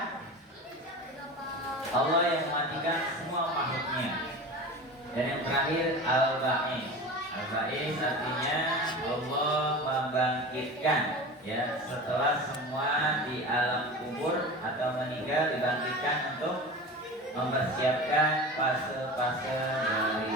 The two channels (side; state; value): both; normal; correlation 0.32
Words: Allah yang mematikan semua makhluknya. Dan yang terakhir Al-Ba'is. Al-Ba'is artinya Allah membangkitkan, ya, setelah semua di alam kubur atau meninggal dibangkitkan untuk mempersiapkan fase-fase